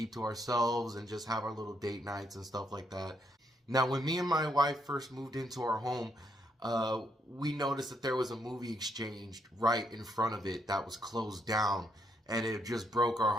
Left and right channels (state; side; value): normal; both; correlation 0.75